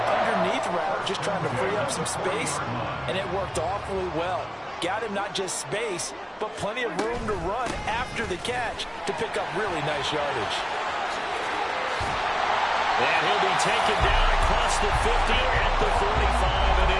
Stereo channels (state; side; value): identical; both; correlation 1.00